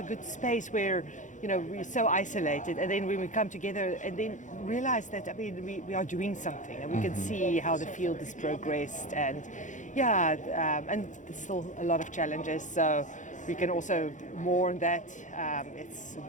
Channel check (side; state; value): right; late; 0.36 ms